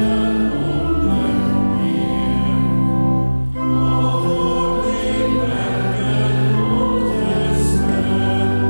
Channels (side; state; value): both; inverted; correlation -1.00